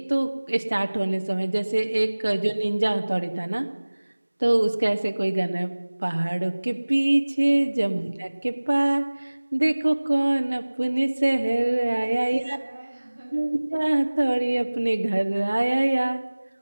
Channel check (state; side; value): inverted; both; correlation -1.00